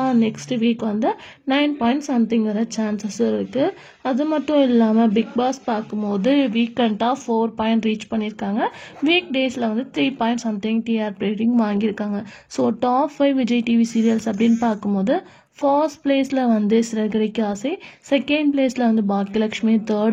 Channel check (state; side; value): identical; both; correlation 1.00